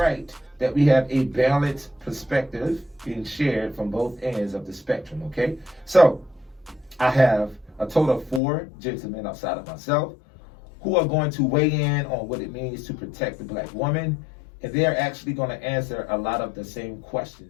that we have a balanced perspective being shared from both ends of the spectrum, okay? So, I have a total of 4 gentlemen outside of myself who are going to weigh in on what it means to protect the black woman, and they're actually going to answer a lot of the same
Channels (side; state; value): right; drops out; at 8.4 s